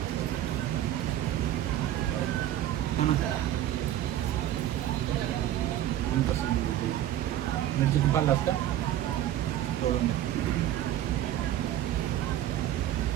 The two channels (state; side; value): quieter; left; 12.4 dB